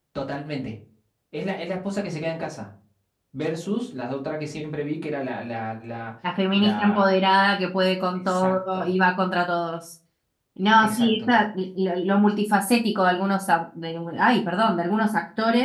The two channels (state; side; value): identical; both; correlation 1.00